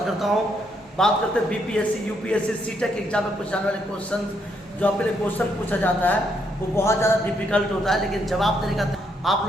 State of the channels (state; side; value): normal; both; correlation 0.75